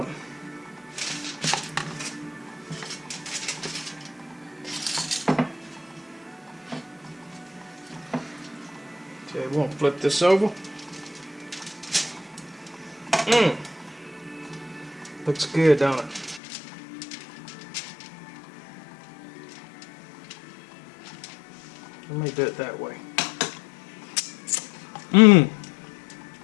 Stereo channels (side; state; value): right; drops out; at 16.4 s